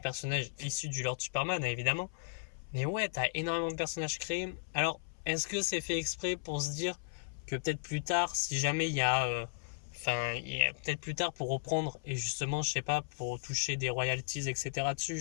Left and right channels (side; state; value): right; silent; 54 dB below the other